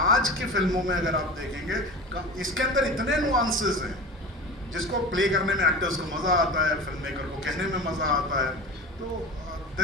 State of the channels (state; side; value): normal; both; correlation 0.32